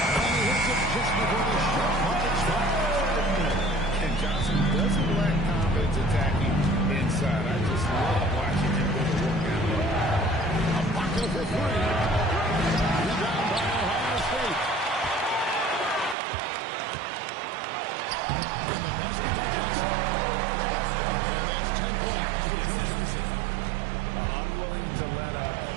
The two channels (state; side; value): drops out; left; at 16.2 s